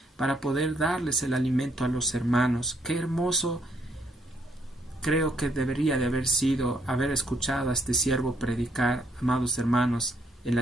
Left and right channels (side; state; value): both; normal; correlation 0.72